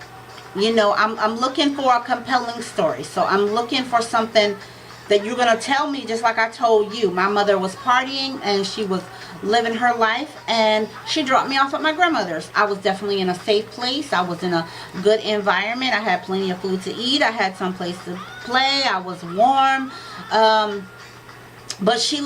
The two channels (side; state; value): both; identical; correlation 1.00